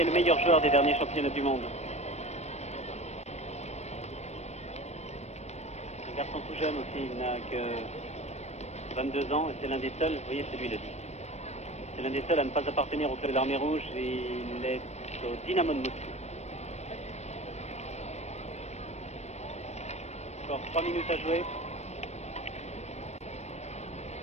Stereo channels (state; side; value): late; right; 0.32 ms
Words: le meilleur joueur des derniers championnats du monde. Un garçon tout jeune aussi, il n'a que 22 ans et c'est l'un des seuls, vous voyez, c'est lui le 10. C'est l'un des seuls à ne pas appartenir au club de l'Armée Rouge et il est au Dynamo de Moscou. Encore 3 minutes à jouer.